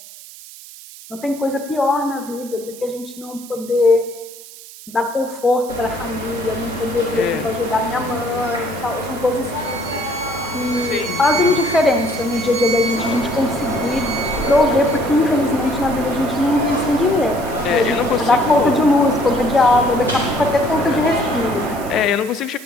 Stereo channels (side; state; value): right; noise; hiss, 17 dB below the sound